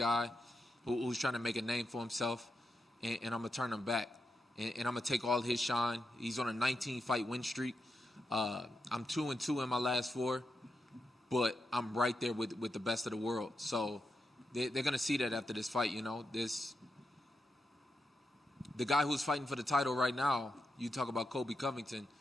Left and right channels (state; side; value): normal; both; correlation 0.86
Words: who's trying to make a name for himself, and I'm going to turn him back. And I'm going to take all his shine. He's on a 19-fight win streak. I'm 2-2 in my last 4, but I'm right there with the best of the world. So they're going to see that after this fight, The guy who's fighting for the title right now, you talk about Kobe Covington,